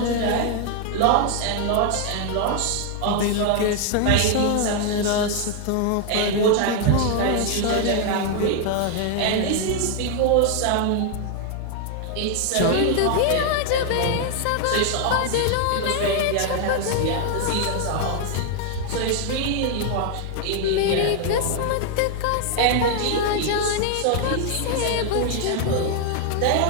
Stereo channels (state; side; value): different; both; correlation 0.00